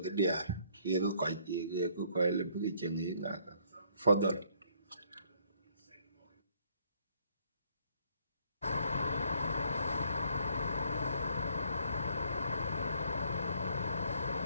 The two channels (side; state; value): both; inverted; correlation -0.66